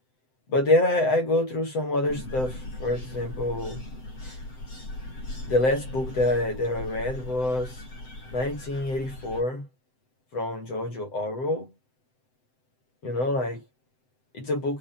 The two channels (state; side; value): late; right; 7.8 ms